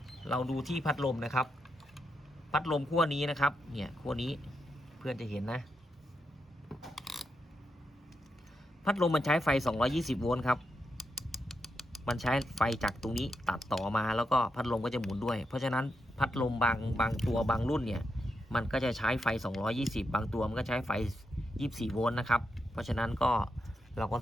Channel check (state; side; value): normal; both; correlation 0.84